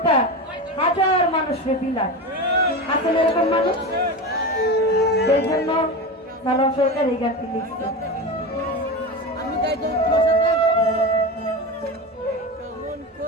হাজার মানুষকে বিলায়। আসলে এরকম মানুষ, সেই জন্য সালাম সরকার এই গানটি লিখছে।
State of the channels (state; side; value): normal; both; correlation 0.23